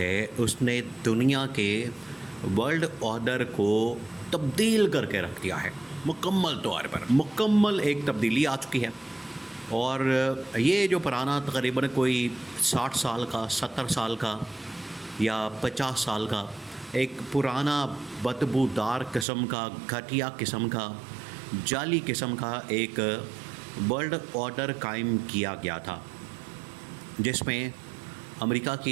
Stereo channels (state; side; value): drops out; left; at 19.2 s